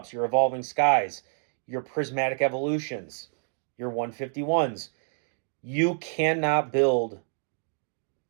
your evolving skies, your prismatic evolutions, your 151s. You cannot build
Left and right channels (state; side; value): silent; left; digital silence